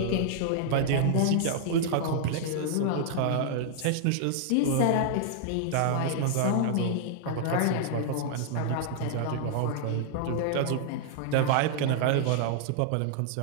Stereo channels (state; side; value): different; both; correlation -0.01